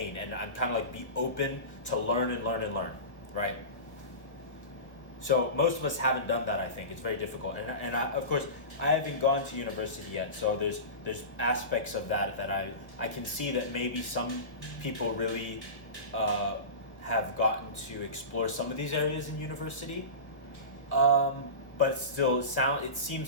and I'm kind of like be open to learn and learn and learn, right? So most of us haven't done that. I think it's very difficult, and of course I haven't gone to university yet. So there's aspects of that I can see that maybe some people really have gotten to explore some of these areas in university. But it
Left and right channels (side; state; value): right; late; 1.3 ms